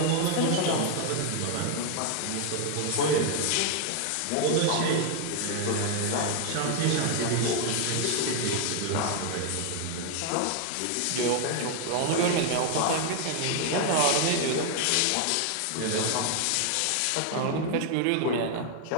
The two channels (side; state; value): both; different; correlation 0.00